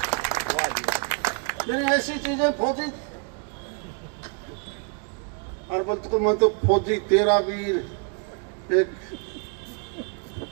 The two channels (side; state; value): left; quieter; 37.6 dB